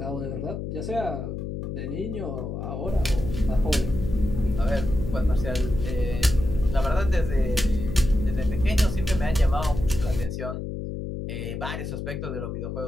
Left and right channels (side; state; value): left; noise; hum, 5 dB below the sound